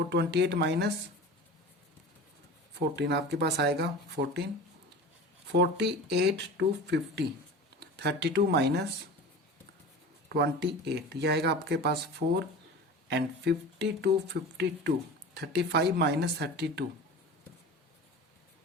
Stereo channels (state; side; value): normal; both; correlation 0.34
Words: - 14 आपके पास आएगा 14। 48 to 50 32 - 28 ये आएगा आपके पास 4। एंड 50 to 52 35 - 32